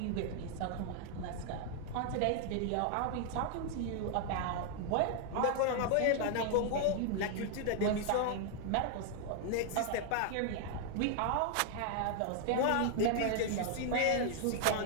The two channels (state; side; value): different; both; correlation 0.00